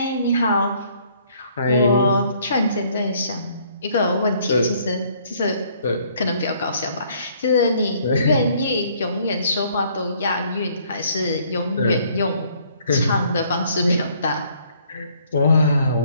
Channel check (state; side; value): inverted; both; correlation -0.63